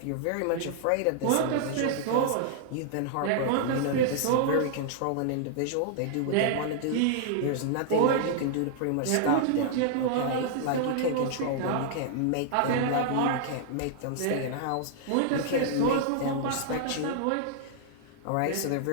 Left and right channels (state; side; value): different; both; correlation -0.01